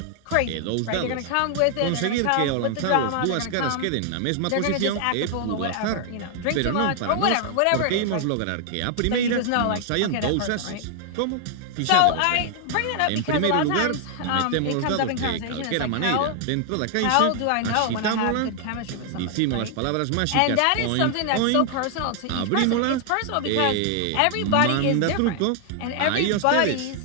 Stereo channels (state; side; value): different; both; correlation 0.00